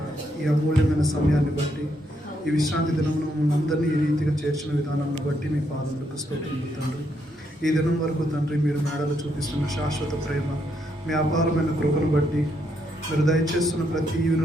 ఈ అమూల్యమైన సమయాన్ని బట్టి, ఈ విశ్రాంతి దినమును మమ్మల్ని అందరినీ ఈ రీతిగా చేర్చిన విధానాన్ని బట్టి మీ పాదములకు స్తోత్రములు తండ్రి. ఈ దినం వరకు తండ్రి మీరు మేడలు చూపిస్తున్న శాశ్వత ప్రేమ, మీ అపారమైన కృపను బట్టి, మీరు దయచేస్తున్న ప్రతి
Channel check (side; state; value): both; normal; correlation 0.76